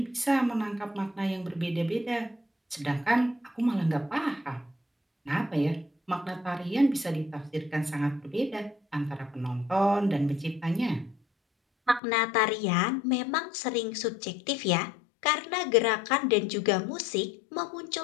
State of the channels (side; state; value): right; drops out; at 12.0 s